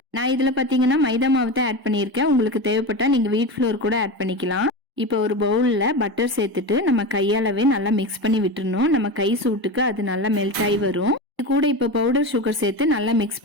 நான் இதுல பாத்தீங்கன்னா மைதா மாவு தான் ஆட் பண்ணியிருக்கேன். உங்களுக்கு தேவைப்பட்டா நீங்க வீட் ஃப்ளோர் கூட ஆட் பண்ணிக்கலாம். இப்போ ஒரு பவுல்ல பட்டர் சேர்த்துட்டு நம்ம கையாலவே நல்லா மிக்ஸ் பண்ணி விட்டுறணும். நம்ம கை சூட்டுக்கு அது நல்லா மெல்ட் ஆகி வரும். இது கூட இப்ப பவுடர் சுகர் சேர்த்து நல்லா மிக்ஸ்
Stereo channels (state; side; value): late; left; 1.0 ms